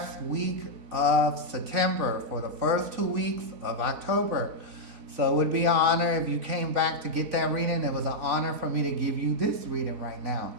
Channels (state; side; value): late; left; 4.0 ms